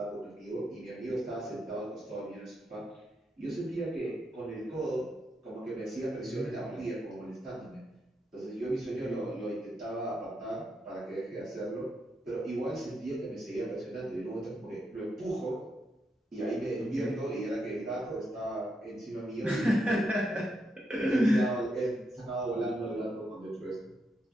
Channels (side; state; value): both; normal; correlation 0.81